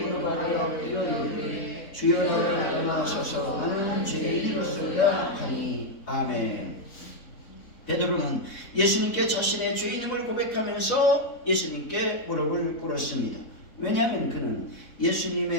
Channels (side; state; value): right; late; 4.0 ms